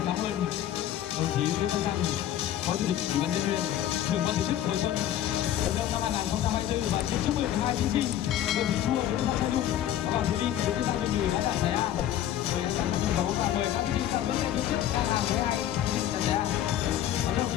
ơn đồng chí Lê Văn Thành, Phó Chủ tịch Ủy ban nhân dân huyện, trưởng ban tổ chức Hồi Xuân Vận động năm 2024 và xin chúc mừng hai thí sinh Nguyễn Thị Chua, Nguyễn Văn Thanh Nhung và Hoàng Thúy Linh, Nguyễn Văn Thanh Nhung đã đạt giải A. Để sẵn sàng sân khấu và mời các thí sinh sang bên phía trước đang làm với hai thí sinh giải A. Và đồng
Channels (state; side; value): quieter; right; 11.7 dB